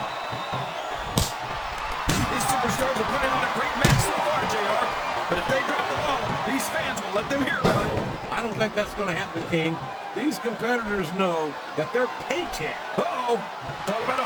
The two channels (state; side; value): identical; both; correlation 1.00